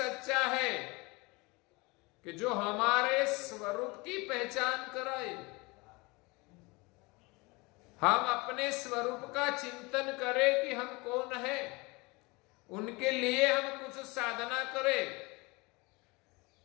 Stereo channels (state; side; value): quieter; right; 25.4 dB